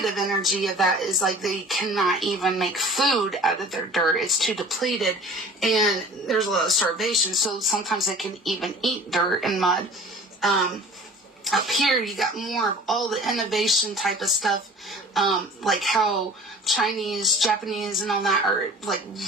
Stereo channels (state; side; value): normal; both; correlation 0.44